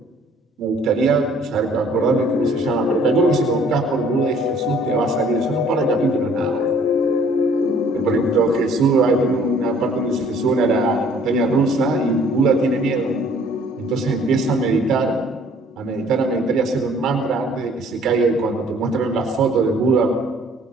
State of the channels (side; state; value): both; normal; correlation 0.57